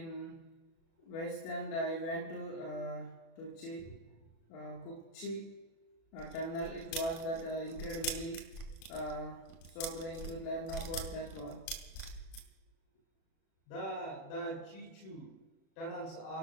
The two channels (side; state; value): right; late; 37 ms